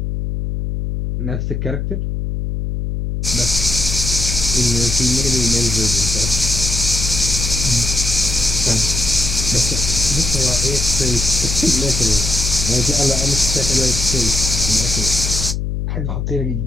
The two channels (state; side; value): noise; left; hum, 3 dB below the sound